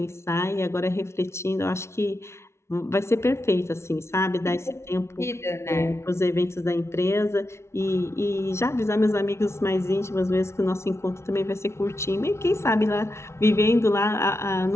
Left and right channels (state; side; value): late; right; 0.13 ms